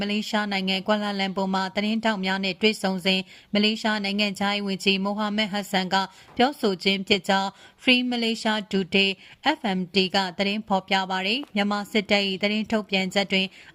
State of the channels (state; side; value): identical; both; correlation 1.00